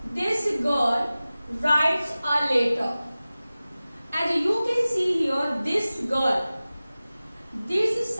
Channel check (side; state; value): both; inverted; correlation -0.97